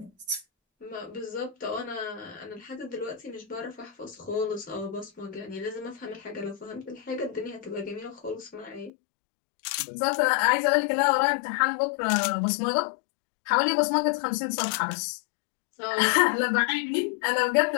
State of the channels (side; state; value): right; drops out; at 8.9 s